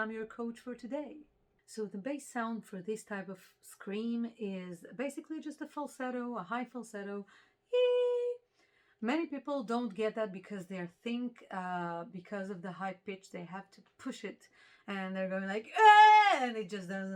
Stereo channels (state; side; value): identical; both; correlation 1.00